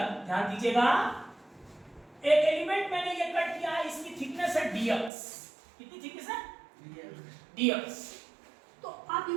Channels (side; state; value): left; drops out; at 5.1 s